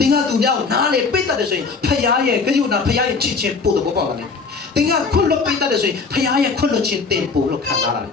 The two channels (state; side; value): quieter; right; 4.7 dB